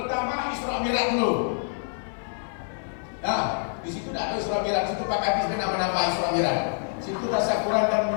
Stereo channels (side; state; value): right; silent; 61 dB below the other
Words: Isra Mi'raj dulu. Nah, di situ tidak ada Isra Mi'raj. Situ Pak Kadis nama-nama Isra Mi'raj. Situ tasyakuran dan